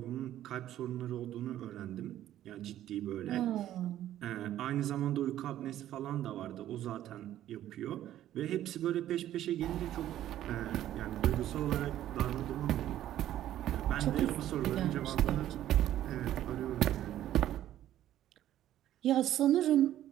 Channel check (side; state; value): left; quieter; 12.5 dB